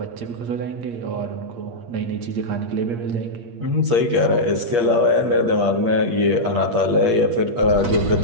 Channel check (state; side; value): late; left; 8.5 ms